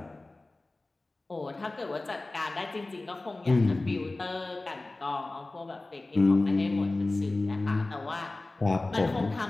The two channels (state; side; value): quieter; right; 3.0 dB